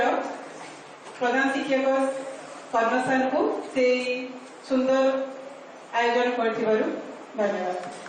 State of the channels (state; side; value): identical; both; correlation 1.00